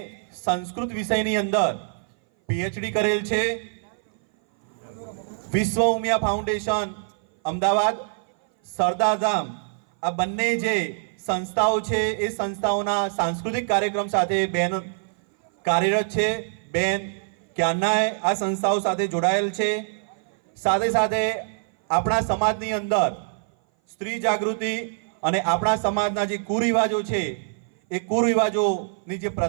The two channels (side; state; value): left; silent; 58 dB below the other